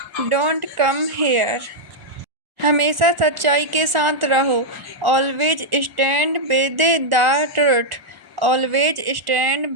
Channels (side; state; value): left; late; 1.4 ms